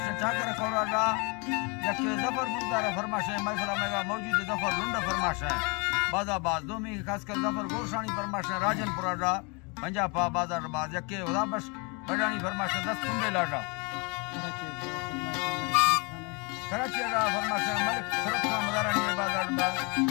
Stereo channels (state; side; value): quieter; right; 31.5 dB